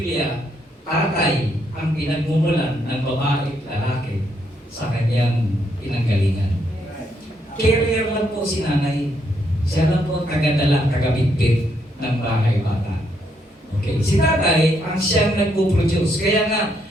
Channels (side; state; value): both; normal; correlation 0.75